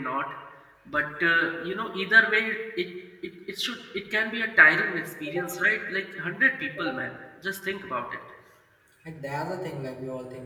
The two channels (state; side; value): identical; both; correlation 1.00